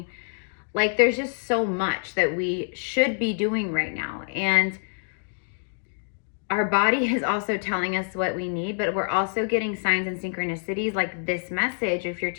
Like there's just so much that we should be doing right now. And our body is also telling us what we need, but we're also getting signs and synchronicities like this message. If you're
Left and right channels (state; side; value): silent; right; digital silence